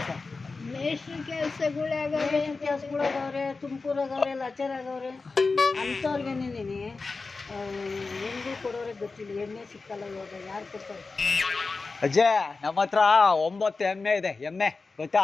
ಮೇಷ್ಟ್ರ ಕೆಲಸಗಳಾಗವ್ರೆ, ತುಮಕೂರಾಗವ್ರೆ, ಲಾಚರಾಗವ್ರೆ. ಅಂಥವ್ರಿಗೆ ನಿಂದಿನಿ ಹೆಣ್ಗೂ ಕೊಡೋರೆ ಗೊತ್ತಿಲ್ಲ. ಎಣ್ಣೆ ಸಿಕ್ಕಲ್ಲ ಇವಾಗ, ಯಾರು ಕೊಡ್ತಾರೆ? ಅಜ್ಜೆ ನಮ್ಮ ಹತ್ರ 9 ಎಮ್ಮೆ ಇದೆ. ಎಮ್ಮೆ ಗೊತ್ತಾ?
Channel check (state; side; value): quieter; right; 4.0 dB